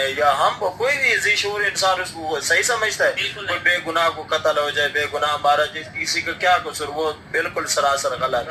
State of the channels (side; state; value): both; identical; correlation 1.00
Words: या हम कोई भी ज़ीशूर इंसान उसको सही समझता है। कोई बेगुनाह को कत्ल हो जाए, बेगुनाह मारा जाए, किसी का क्या कसूर, वो बिल्कुल सरासर गलत